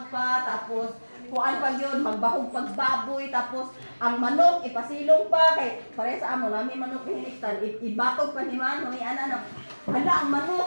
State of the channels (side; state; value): both; inverted; correlation -1.00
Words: pa tapos kuan pa gyud magbahog pagbaboy tapos ang manok ipasilong pa kay pare sa amo nami manok hiniktan ibatog pa ni man ni ana hala ang